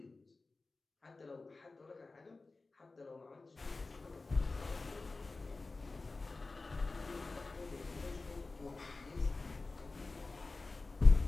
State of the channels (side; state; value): right; quieter; 3.6 dB